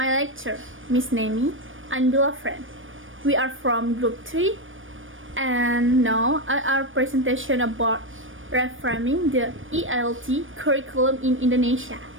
lecturer, Miss Nemi, and beloved friend. We are from Group 3, and now our presentation about reframing the ELT curriculum in Indonesia.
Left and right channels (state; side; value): late; left; 0.57 ms